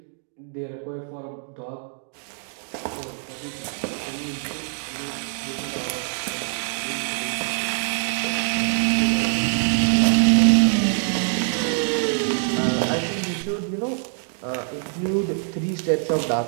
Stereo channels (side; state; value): left; silent; 62 dB below the other